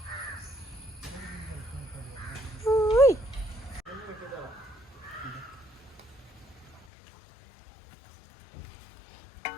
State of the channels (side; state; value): right; drops out; at 6.9 s